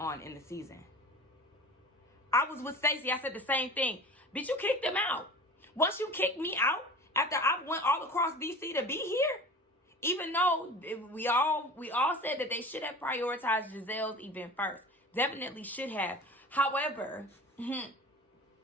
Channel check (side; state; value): both; normal; correlation 0.38